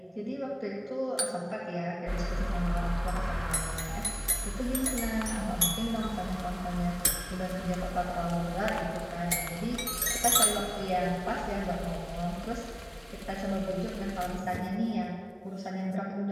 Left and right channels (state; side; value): identical; both; correlation 1.00